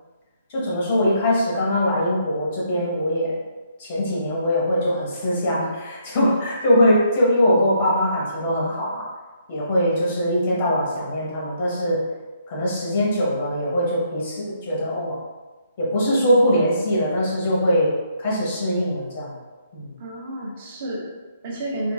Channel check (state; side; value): inverted; both; correlation -0.72